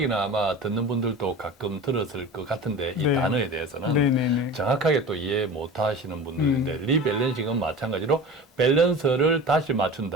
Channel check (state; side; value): normal; both; correlation 0.34